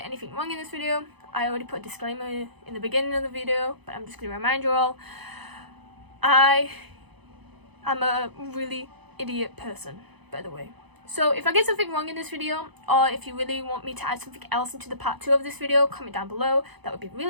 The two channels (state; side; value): late; left; 0.99 ms